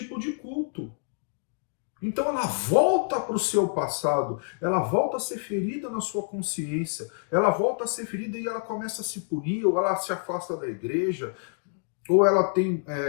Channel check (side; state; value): right; silent; digital silence